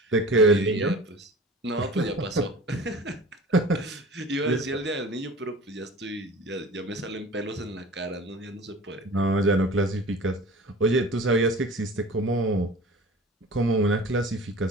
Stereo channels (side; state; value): both; normal; correlation 0.40